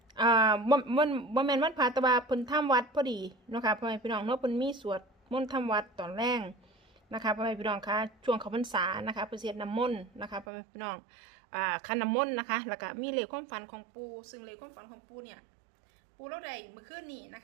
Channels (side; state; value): left; drops out; at 10.5 s